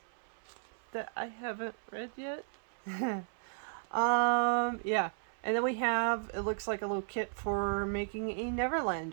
that I haven't read yet. Yeah. And then we have, it looks like a little kit for making a Neverland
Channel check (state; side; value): silent; left; 55 dB below the other